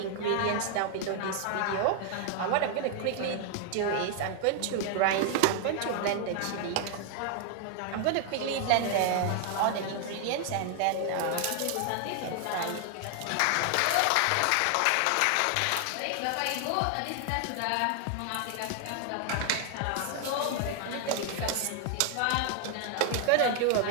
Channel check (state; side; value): different; both; correlation 0.00